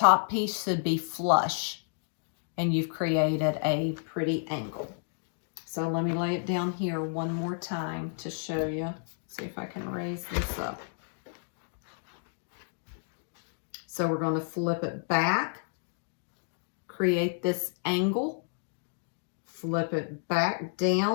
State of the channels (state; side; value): silent; right; digital silence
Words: piece should be flush, and you've created a pretty angle. So let me lay it down here one more time to show you. See if I can raise this up. So we're going to flip it back, create this angle, flip it back